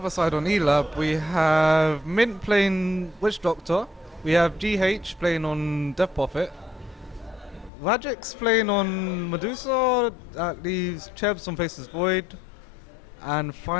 side on Elab, we have Mint playing Witch Doctor, we have GH playing on Death Prophet, Rajix playing on Medusa, that leaves Chebs on Faceless Void, and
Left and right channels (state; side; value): drops out; right; at 7.7 s